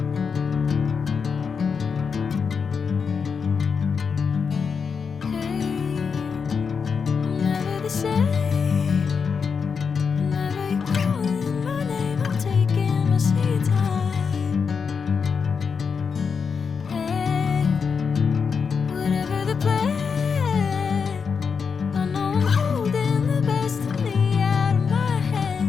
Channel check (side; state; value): right; quieter; 5.9 dB